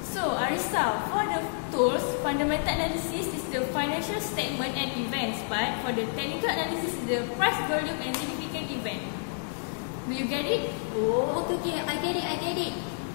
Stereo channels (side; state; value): right; silent; 57 dB below the other